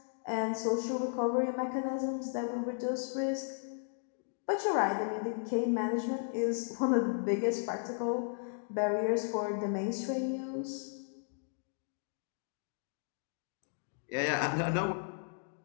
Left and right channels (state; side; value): silent; right; digital silence